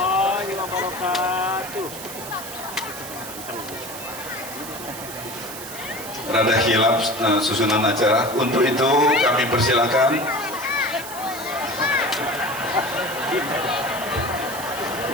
wabarakatuh. Rada hilaf susunan acara. Untuk itu kami persilakan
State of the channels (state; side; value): noise; right; hiss, 11 dB below the sound